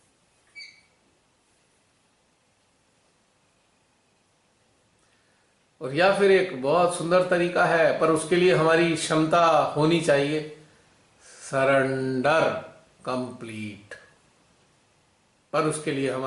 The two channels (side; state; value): both; identical; correlation 1.00